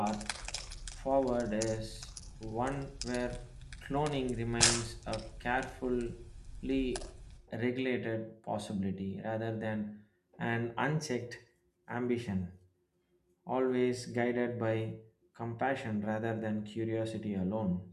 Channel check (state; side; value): identical; both; correlation 1.00